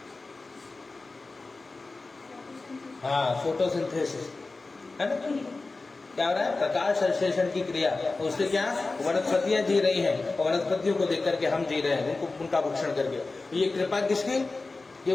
हाँ, फोटोसिंथेसिस, है ना। क्या हो रहा है? प्रकाश संश्लेषण की क्रिया। उससे क्या वनस्पतियां जी रही हैं और वनस्पतियों को देख करके हम जी रहे हैं, उनका भक्षण करके। ये कृपा किसकी?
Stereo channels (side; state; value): right; quieter; 3.6 dB